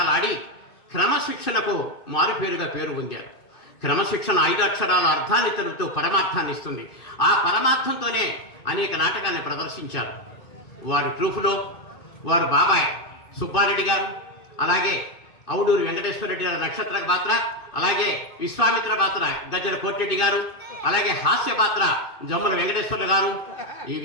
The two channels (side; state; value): right; late; 2.5 ms